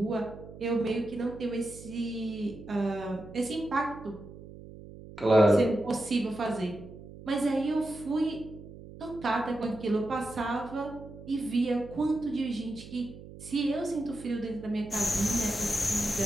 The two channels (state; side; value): noise; right; hum, 15 dB below the sound